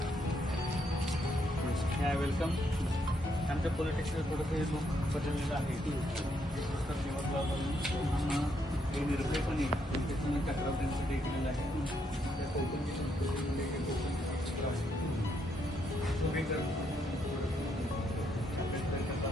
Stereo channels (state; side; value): normal; both; correlation 0.76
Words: वेलकम। आमच्या पॉलिटिक्सला थोडंसं लुक बदललेलं आहे। पुस्तक निवडला निर्भयपणे त्याच्यामध्ये तक्रार त्यांच्यासाठी केलेलं आहे। त्या कोकणची संस्कृतीमध्ये